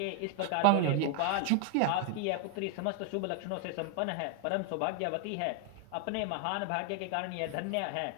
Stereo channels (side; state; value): both; different; correlation 0.00